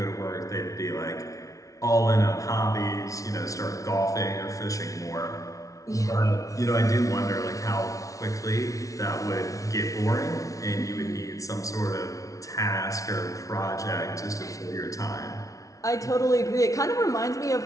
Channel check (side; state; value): right; late; 0.17 ms